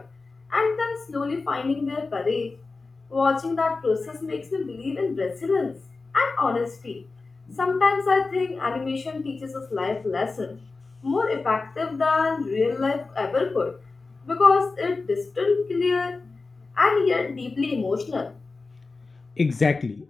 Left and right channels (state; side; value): quieter; right; 3.9 dB